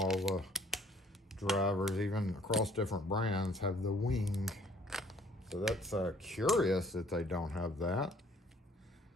the drivers, even across different brands, have the wing. So that's curious that they don't have that.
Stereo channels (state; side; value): normal; both; correlation 0.59